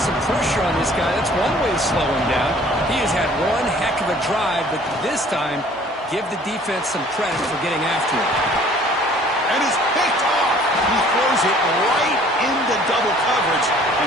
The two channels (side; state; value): both; normal; correlation 0.54